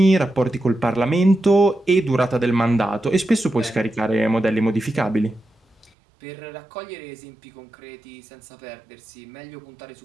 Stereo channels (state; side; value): drops out; left; at 5.9 s